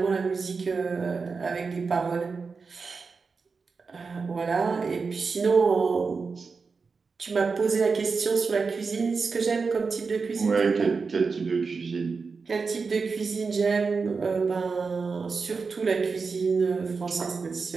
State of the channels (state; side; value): quieter; left; 4.8 dB